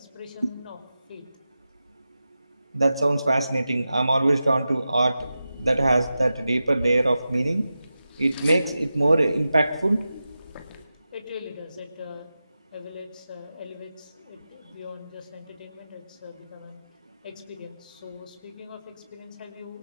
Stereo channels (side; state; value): both; inverted; correlation -0.92